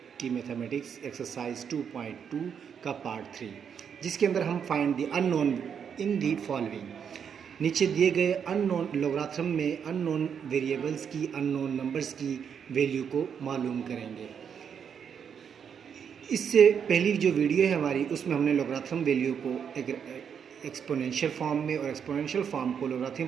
की मैथमेटिक्स एक्सरसाइज 2.2 का पार्ट 3, जिसके अंदर हम find the unknown in the following. नीचे दिए गए अननोन लोगारिथम में अननोन वेरिएबल्स की, अननोन नंबर्स की वैल्यू को मालूम करेंगे। इससे पहली जो वीडियो है हमारी, उसमें हमने लोगारिथम वैल्यू को एक एक्सपोनेंशियल फॉर्म में और एक्सपोनेंशियल फॉर्म को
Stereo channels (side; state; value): left; quieter; 7.5 dB